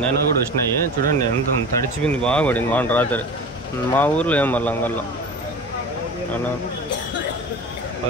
అయినా కూడా వచ్చినాయి చూడండి ఎంత తడిచిపోయింది బాగా పడింది వాన రాత్రి మా ఊర్లో ఏం మళ్ళీ అంగల్లో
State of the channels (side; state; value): both; normal; correlation 0.34